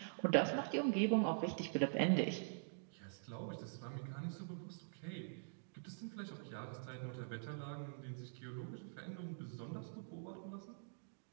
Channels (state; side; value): silent; left; digital silence